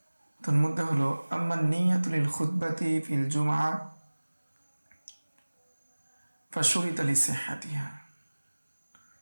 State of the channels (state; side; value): inverted; both; correlation -1.00